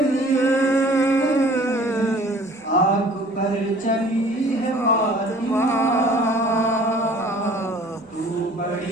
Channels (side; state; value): both; normal; correlation 0.51